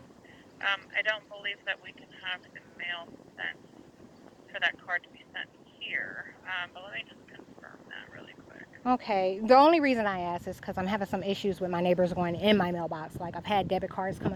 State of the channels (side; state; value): both; identical; correlation 1.00